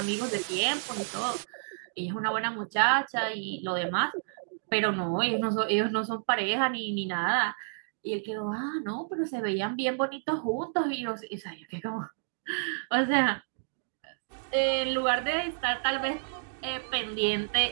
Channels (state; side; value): silent; left; digital silence